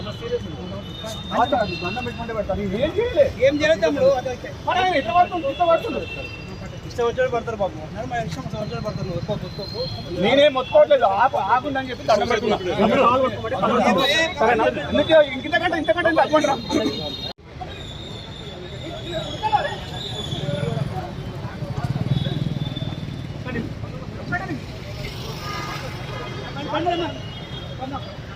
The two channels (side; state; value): both; identical; correlation 1.00